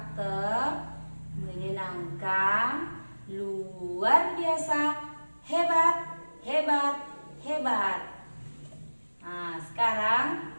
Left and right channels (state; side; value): inverted; both; correlation -1.00